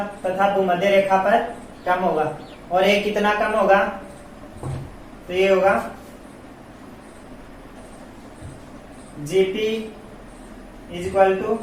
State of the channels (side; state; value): both; identical; correlation 1.00